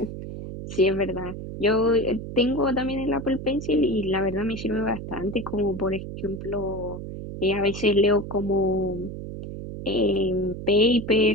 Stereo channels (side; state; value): right; noise; hum, 9 dB below the sound